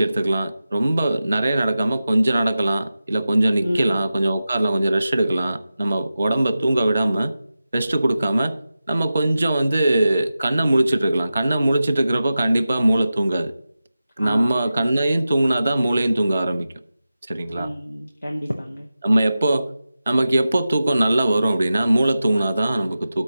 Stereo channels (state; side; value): inverted; both; correlation -0.93